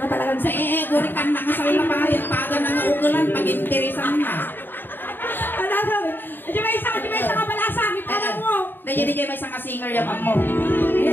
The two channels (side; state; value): right; late; 0.094 ms